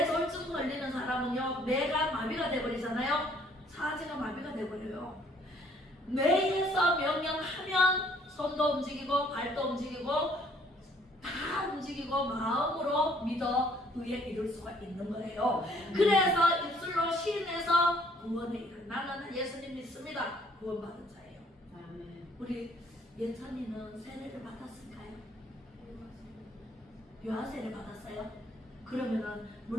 절증 걸리는 사람은요, 뇌가 마비가 돼버리잖아요. 사지가 마비가 돼버려요. 뇌에서 명령하면 손도 움직이고 발도 움직이고 다 움직이고 마음으로 믿어 의에 이룰 수가 있는 거예요. 그래서 입술로 시인해서 구원에 이르. 나는 예수님 믿습니다. 구원받은 자예요. 우리 예찬이는 세례를 받았을까요? 유아세례 받았어요? 그러면은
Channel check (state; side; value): normal; both; correlation 0.62